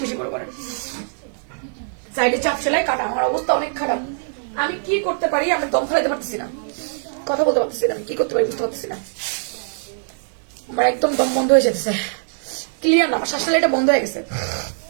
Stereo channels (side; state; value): left; silent; digital silence